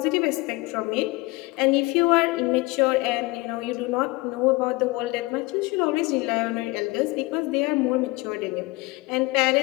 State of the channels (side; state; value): right; quieter; 22.8 dB